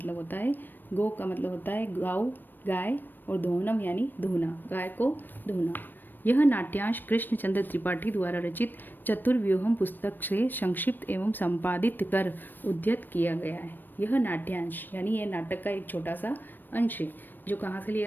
होता है, गो का मतलब होता है गाँव, गाय, और दोहनम यानी धोना, गाय को धोना। यह नाट्यांश कृष्णचंद्र त्रिपाठी द्वारा रचित चतुर्व्यूहम पुस्तक से संक्षिप्त एवं संपादित कर उद्धृत किया गया है। यह नाट्यांश यानी यह नाटक का एक छोटा सा अंश है जो कहाँ से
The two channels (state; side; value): late; right; 0.092 ms